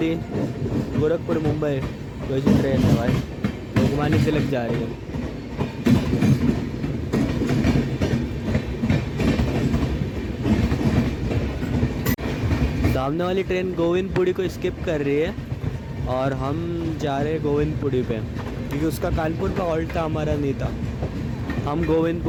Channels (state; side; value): identical; both; correlation 1.00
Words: गोरखपुर मुंबई कोई सी ट्रेन है भाई, लोकमान्य तिलक जा रही है। सामने वाली ट्रेन गोविंदपुरी को स्किप कर रही है और हम जा रहे हैं गोविंदपुरी पे, क्योंकि उसका कानपुर का हॉल्ट था, हमारा नहीं था। हम